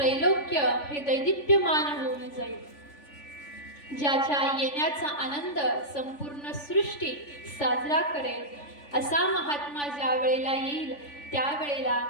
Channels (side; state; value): right; late; 3.5 ms